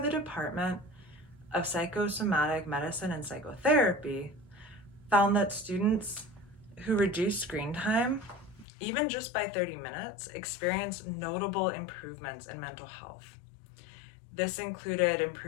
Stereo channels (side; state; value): right; drops out; at 8.7 s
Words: Department of Psychosomatic Medicine and Psychotherapy found that students who reduced screen time, even just by 30 minutes, experienced notable improvements in mental health. This included